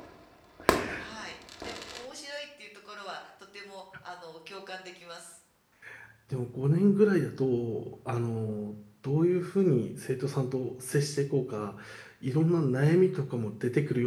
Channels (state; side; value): identical; both; correlation 1.00